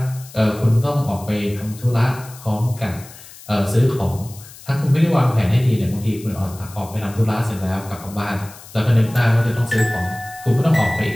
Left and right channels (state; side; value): noise; left; hiss, 19 dB below the sound